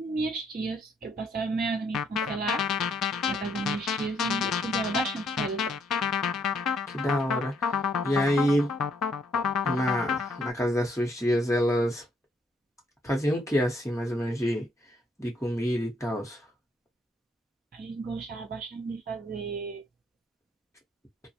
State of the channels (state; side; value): normal; both; correlation 0.71